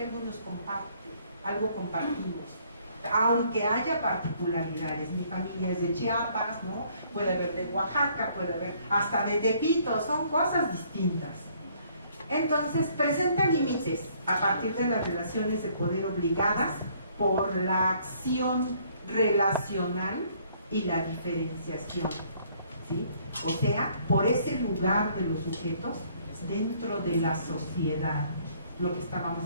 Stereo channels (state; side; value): inverted; both; correlation -0.63